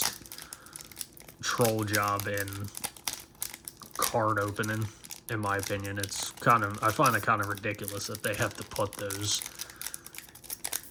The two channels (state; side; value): identical; both; correlation 1.00